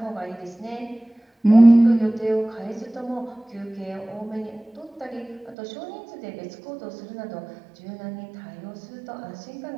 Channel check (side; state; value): left; drops out; at 5.6 s